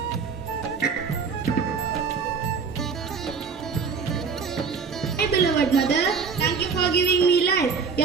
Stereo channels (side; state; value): left; quieter; 5.6 dB